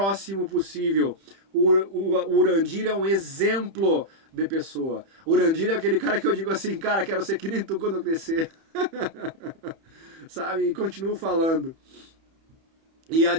possível. O Urandir é um exemplo de pessoa. O Urandir é aquele cara que eu digo assim, cara, quero ser que nem tu quando eu crescer. Sabe? E continuo falando. E a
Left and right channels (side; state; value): left; late; 31 ms